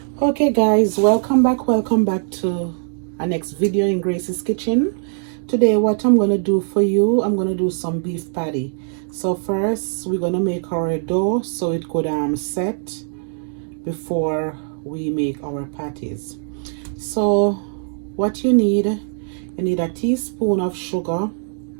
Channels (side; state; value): left; silent; digital silence